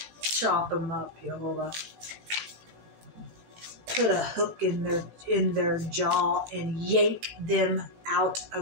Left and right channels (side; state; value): left; late; 18 ms